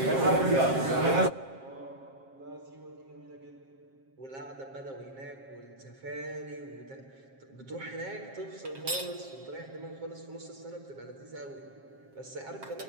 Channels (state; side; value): late; left; 7.5 ms